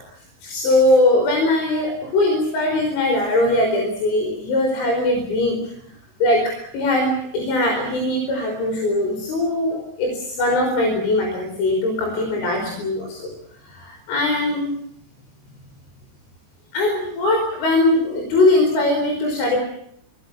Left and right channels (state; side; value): late; right; 19 ms